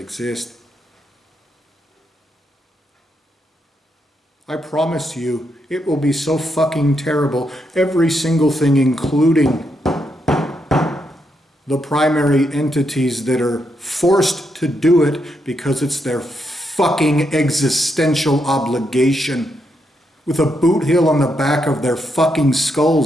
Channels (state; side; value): normal; both; correlation 0.80